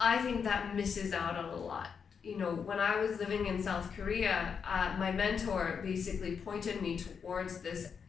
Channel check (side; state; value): right; quieter; 6.4 dB